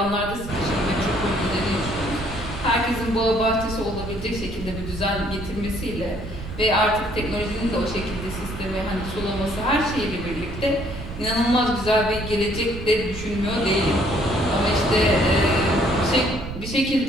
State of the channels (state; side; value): noise; right; rumble, 9 dB below the sound